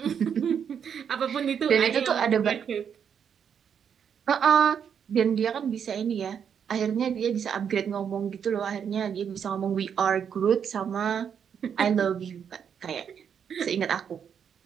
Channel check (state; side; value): quieter; left; 7.7 dB